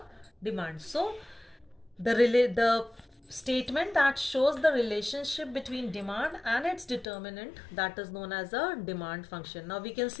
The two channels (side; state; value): right; drops out; at 7.1 s